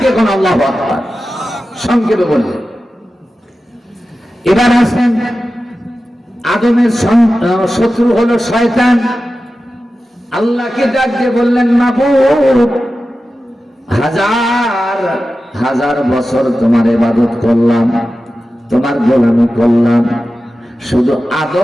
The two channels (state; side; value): normal; both; correlation 0.93